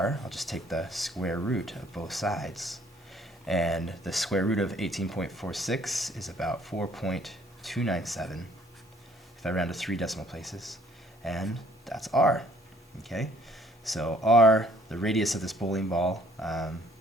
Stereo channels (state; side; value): normal; both; correlation 0.61